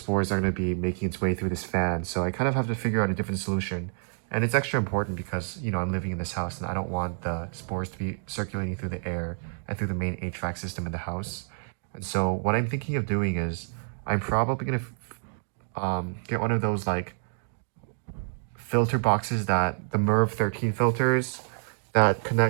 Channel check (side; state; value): left; silent; digital silence